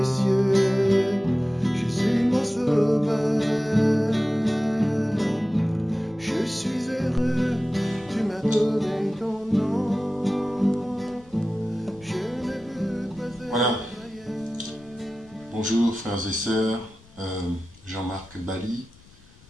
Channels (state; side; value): noise; left; rumble, 26 dB below the sound